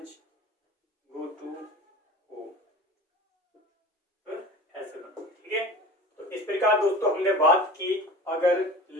go to home। ऐसे ना, ठीक है। तो इस प्रकार दोस्तों हमने बात की, अगर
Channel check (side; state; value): both; normal; correlation 0.38